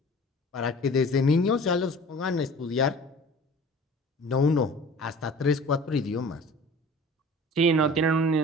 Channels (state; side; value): normal; both; correlation 0.44